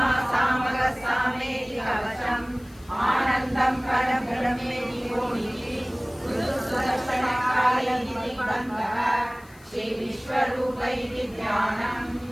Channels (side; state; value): left; noise; hiss, 26 dB below the sound